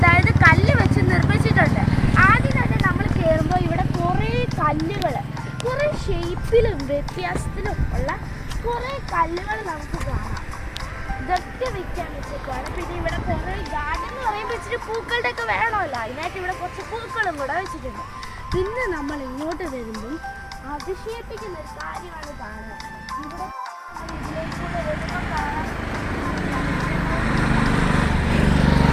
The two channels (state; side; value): identical; both; correlation 1.00